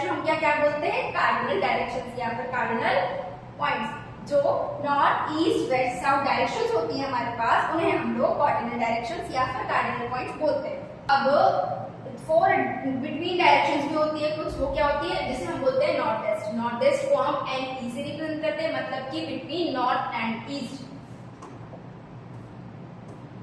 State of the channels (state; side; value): identical; both; correlation 1.00